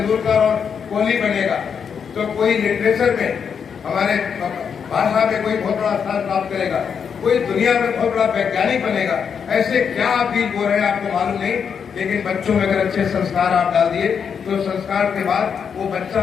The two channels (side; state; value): right; quieter; 6.9 dB